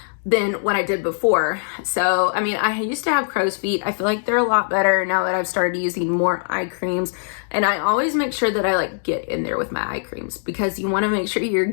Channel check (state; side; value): silent; right; digital silence